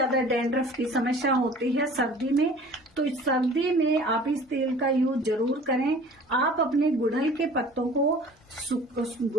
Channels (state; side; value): normal; both; correlation 0.46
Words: डैंड्रफ की समस्या होती है सर्दी में, तो इस सर्दी में आप इस तेल का यूज जरूर करें। आप अपने गुड़हल के पत्तों को,